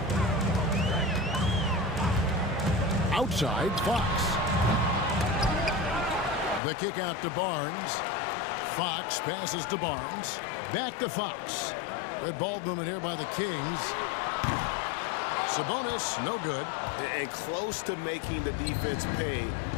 Outside, Fox. The kick out to Barnes. Fox passes to Barnes. Back to Fox. Good ball movement here by the Kings. Sabonis, no good. And close to making the defense pay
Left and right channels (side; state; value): right; drops out; at 6.6 s